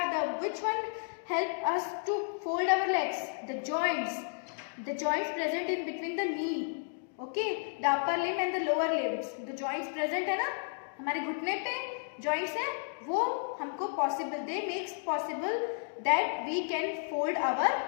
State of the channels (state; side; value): silent; right; digital silence